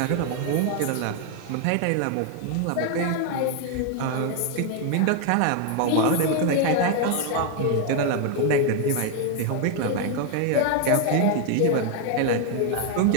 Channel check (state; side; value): different; both; correlation 0.01